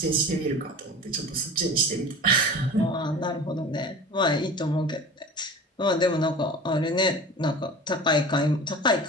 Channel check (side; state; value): both; normal; correlation 0.37